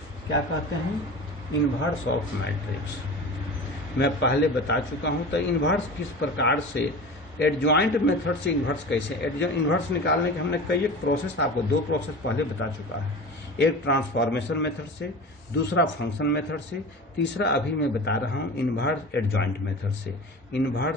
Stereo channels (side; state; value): both; normal; correlation 0.33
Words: क्या कहते हैं? इनवर्स ऑफ मैट्रिक्स मैं पहले बता चुका हूँ। तो इनवर्स किस प्रकार से, एडजॉइंट मेथड से इनवर्स कैसे, इनवर्स निकालने के हमने कई एक प्रोसेस, आपको 2 प्रोसेस पहले बता चुका है, एक ट्रांसफॉर्मेशन मेथड से, दूसरा फंक्शन मेथड से, तीसरा अभी मैं बता रहा हूँ इनवर्स एडजॉइंट मेथड से।